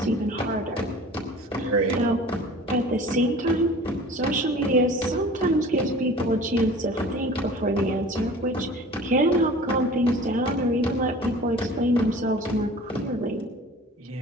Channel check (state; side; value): normal; both; correlation 0.43